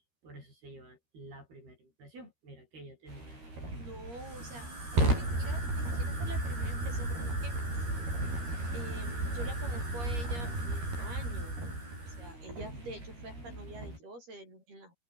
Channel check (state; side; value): late; left; 13 ms